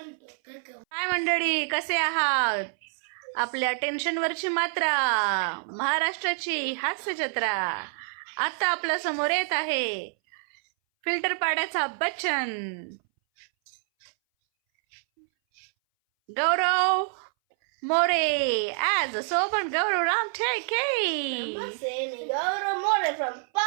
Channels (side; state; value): left; silent; 59 dB below the other